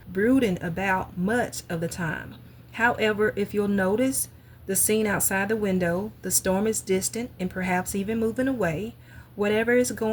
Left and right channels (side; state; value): both; identical; correlation 1.00